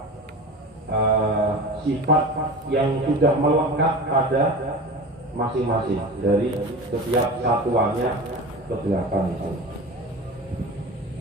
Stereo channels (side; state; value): both; normal; correlation 0.32